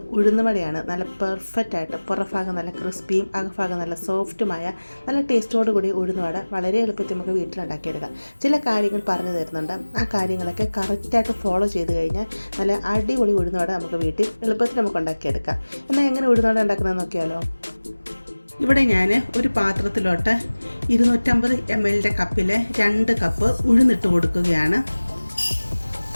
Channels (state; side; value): inverted; both; correlation -1.00